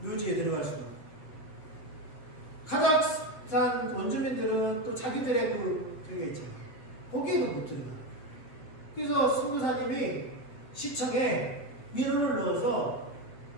묘지에 들어갈 수도 없고 카자흐스탄 원주민들은 또 자기들의 저게 있잖아요. 거기에도 못 들어가. 그래서 선교사님이 시청에 민원을 넣어서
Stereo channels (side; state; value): right; late; 7.6 ms